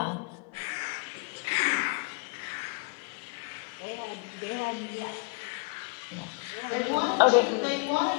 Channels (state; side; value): quieter; right; 30.7 dB